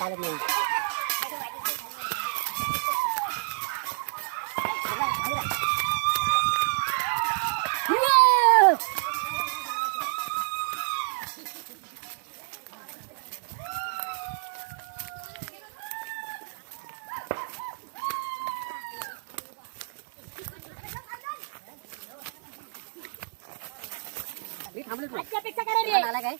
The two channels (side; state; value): left; silent; 55 dB below the other